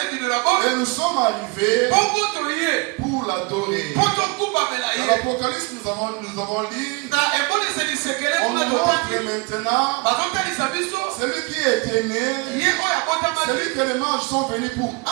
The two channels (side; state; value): left; quieter; 28.2 dB